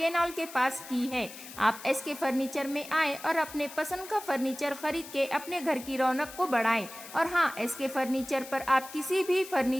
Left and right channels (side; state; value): left; noise; hiss, 14 dB below the sound